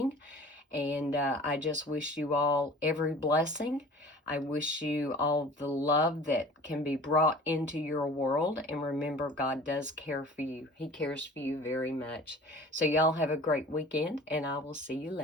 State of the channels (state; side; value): normal; both; correlation 0.44